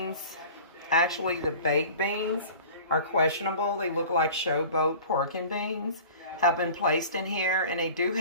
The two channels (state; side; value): inverted; both; correlation -0.41